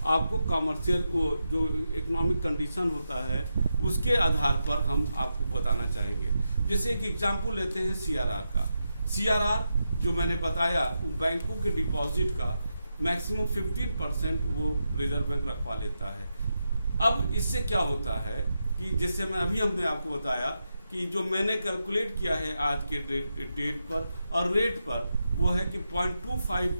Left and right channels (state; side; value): inverted; both; correlation -0.87